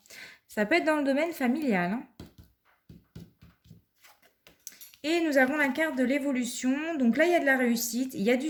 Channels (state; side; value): identical; both; correlation 1.00